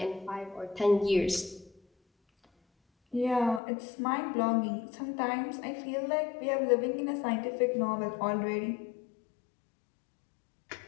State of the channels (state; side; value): drops out; right; at 3.6 s